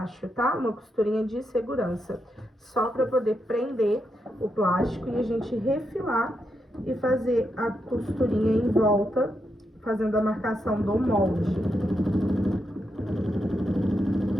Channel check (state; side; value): normal; both; correlation 0.83